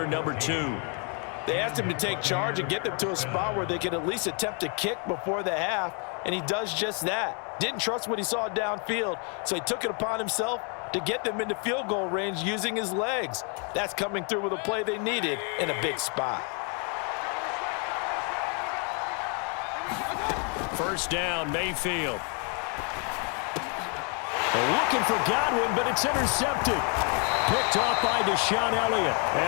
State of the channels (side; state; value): right; quieter; 37.4 dB